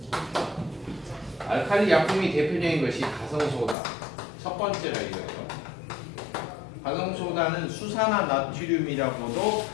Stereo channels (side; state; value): right; drops out; at 3.8 s